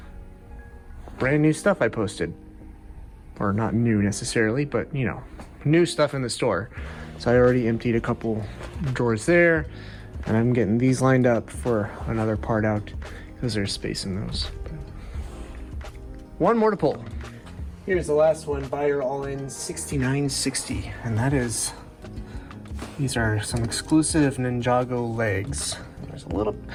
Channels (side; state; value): both; identical; correlation 1.00